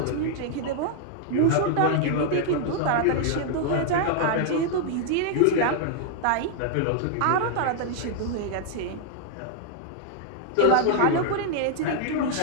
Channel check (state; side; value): different; both; correlation 0.00